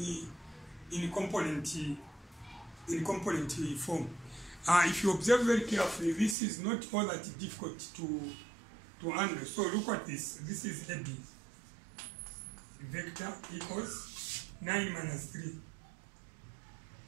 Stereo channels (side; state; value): left; drops out; at 6.4 s